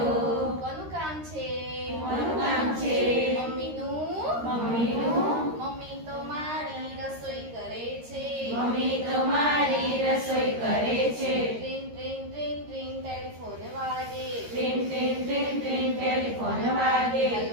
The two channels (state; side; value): late; left; 13 ms